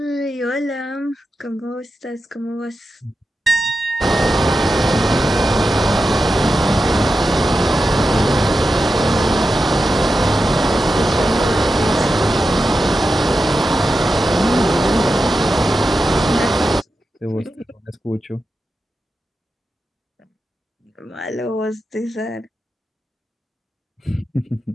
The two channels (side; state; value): both; normal; correlation 0.90